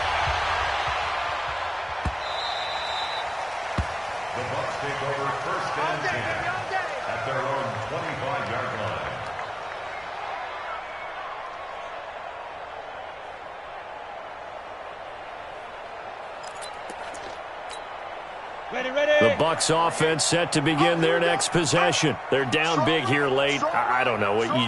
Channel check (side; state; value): both; identical; correlation 1.00